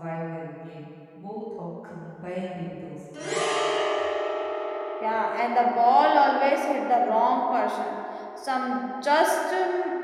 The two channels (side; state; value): both; identical; correlation 1.00